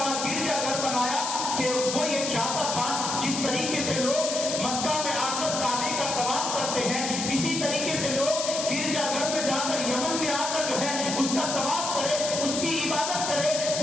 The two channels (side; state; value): left; noise; hiss, 3 dB below the sound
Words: گرجا گھر بنایا کہ وہ یہ چاہتا تھا جس طریقے سے لوگ مکہ میں آ کر کعبے کا طواف کرتے ہیں، اسی طریقے سے لوگ گرجا گھر میں جا کر، یمن میں آ کر جو ہے اس کا طواف کرے، اس کی عبادت کرے،